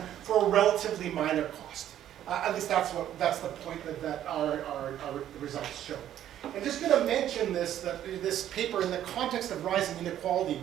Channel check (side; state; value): left; quieter; 11.4 dB